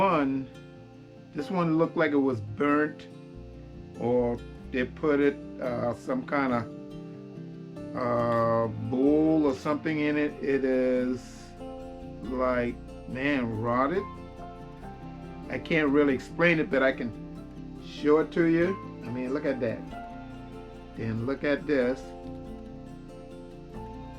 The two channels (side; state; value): both; identical; correlation 1.00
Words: one looked like it was burnt, or they put it some kind of bowl or something in it. It is like, man, rotted. I can't really explain it, but I can show it to you. I mean, look at that. Then look at this.